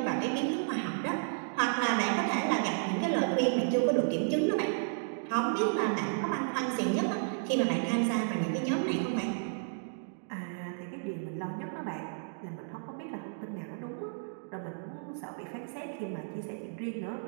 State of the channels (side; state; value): left; silent; digital silence